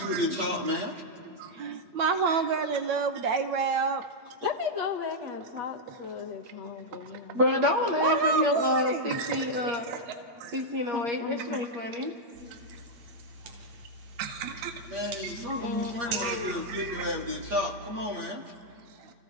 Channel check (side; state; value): left; late; 8.5 ms